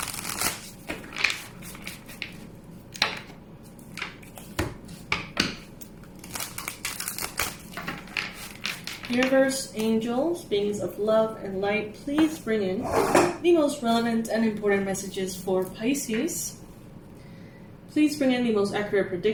Universe, angels, beings of love and light, please bring in the most relevant and important messages for Pisces. Please bring in the most accurate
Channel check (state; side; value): identical; both; correlation 1.00